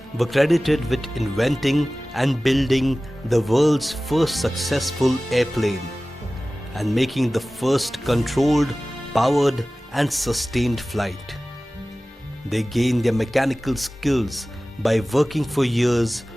were credited with inventing and building the world's first successful airplane and making the first controlled, powered and sustained flight. They gained their mechanical skills by working for years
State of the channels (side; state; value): both; normal; correlation 0.97